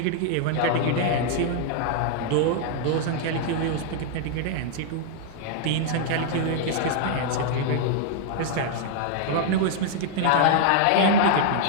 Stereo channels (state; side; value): different; both; correlation -0.01